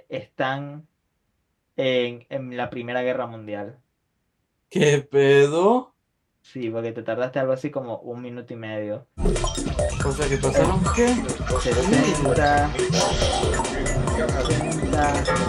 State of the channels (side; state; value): both; identical; correlation 1.00